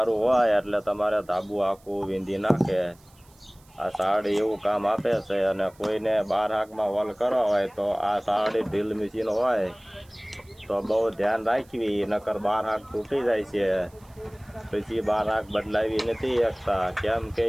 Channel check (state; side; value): noise; right; hiss, 29 dB below the sound